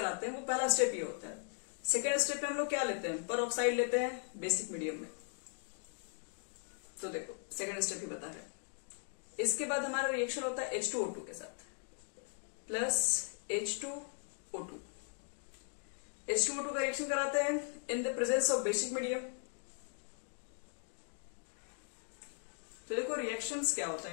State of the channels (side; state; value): right; silent; 52 dB below the other